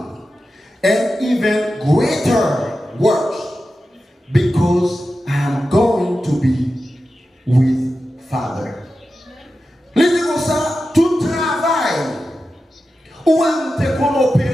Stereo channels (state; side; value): normal; both; correlation 0.92